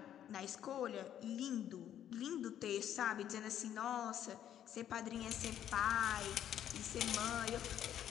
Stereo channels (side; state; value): right; quieter; 10.5 dB